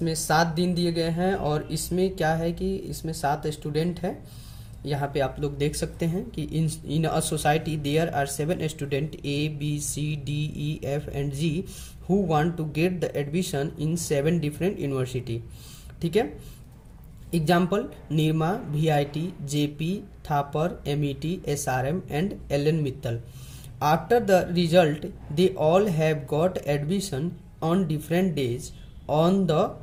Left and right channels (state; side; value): identical; both; correlation 1.00